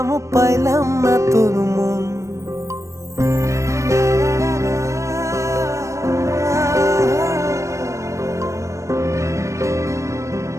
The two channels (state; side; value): late; left; 0.15 ms